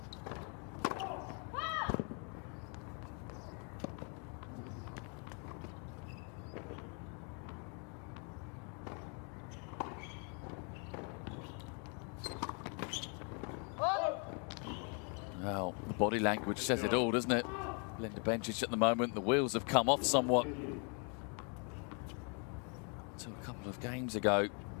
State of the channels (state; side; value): quieter; right; 37.9 dB